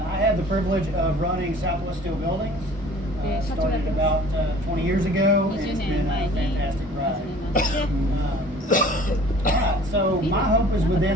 had the privilege of running Southwest Steel Buildings. Started about 20 years ago, and it's been a fantastic ride. Alright, so my hope is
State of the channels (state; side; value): normal; both; correlation 0.48